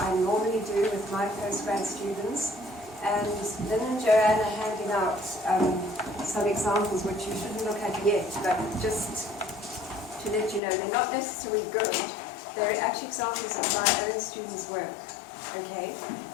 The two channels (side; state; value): right; drops out; at 10.6 s